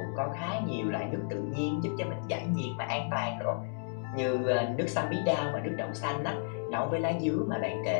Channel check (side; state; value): right; silent; digital silence